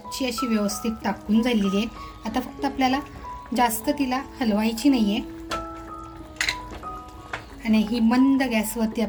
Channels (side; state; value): both; identical; correlation 1.00